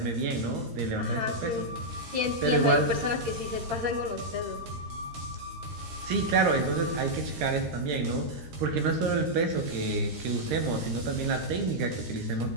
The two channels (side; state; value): left; late; 13 ms